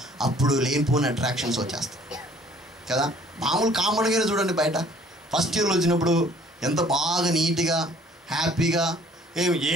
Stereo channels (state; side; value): normal; both; correlation 0.57